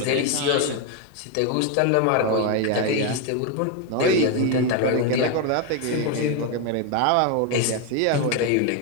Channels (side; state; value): both; different; correlation 0.01